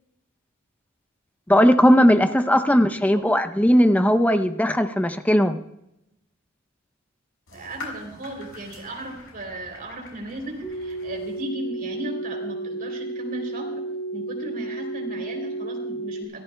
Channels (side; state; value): both; normal; correlation 0.85